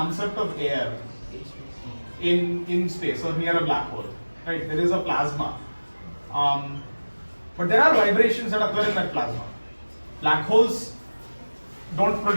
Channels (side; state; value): both; inverted; correlation -1.00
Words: of air in space or near a black hole, right? There is a plasma, but there are vibrations that occur in that plasma. Black holes don't